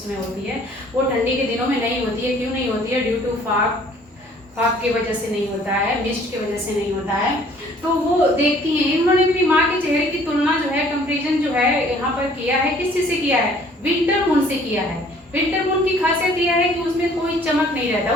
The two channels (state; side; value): normal; both; correlation 0.56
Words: होती है, वो ठंडी के दिनों में नहीं होती है। क्यों नहीं होती है? ड्यू टू फाग की वजह से नहीं होता है, मिस्ट की वजह से नहीं होता है। तो वो देखती हैं, इन्होंने अपनी माँ के चेहरे की तुलना जो है, कंपेरिजन जो है यहाँ पर किया है, किस चीज से किया है? विंटर मून से किया है। विंटर मून की खासियत यह है कि उसमें कोई चमक नहीं रहता,